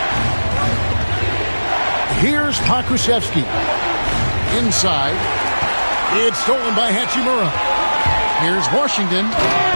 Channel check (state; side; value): inverted; both; correlation -1.00